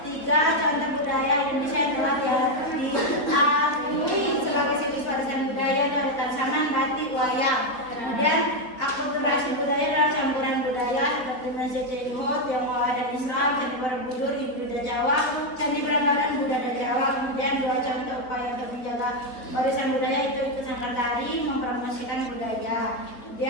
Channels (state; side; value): late; right; 4.0 ms